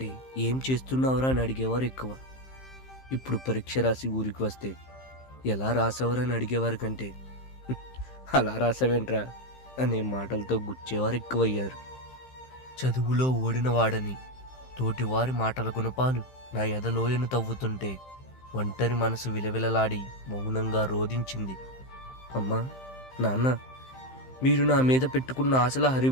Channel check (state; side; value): late; right; 15 ms